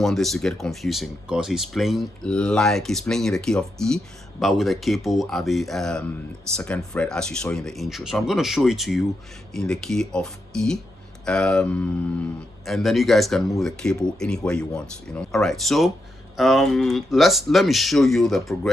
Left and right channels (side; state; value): both; normal; correlation 0.84